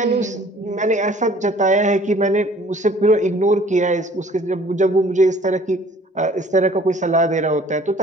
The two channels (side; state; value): both; normal; correlation 0.53